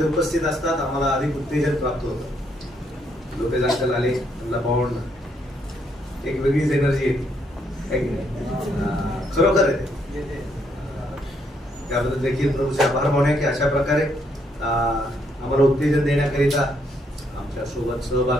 उपस्थित असतात आम्हाला अधिक उत्तेजन प्राप्त होतं. लोकेश अंकल आले, त्यांना पाहून एक वेगळीच एनर्जी येते. खरोखर आहे, त्याबद्दल देखील प्रभूचे आभार मानूया की अशा प्रकारे आम्हाला उत्तेजन देण्याकरिता, आमच्या सोबत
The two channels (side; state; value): both; normal; correlation 0.73